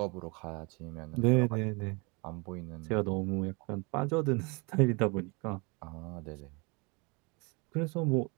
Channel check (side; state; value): left; quieter; 29.6 dB